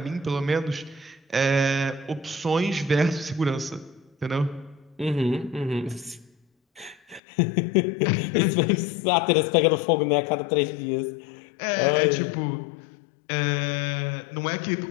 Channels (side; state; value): right; drops out; at 7.2 s